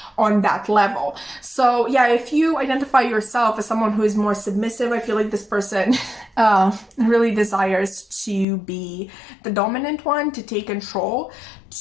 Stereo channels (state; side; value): drops out; right; at 8.5 s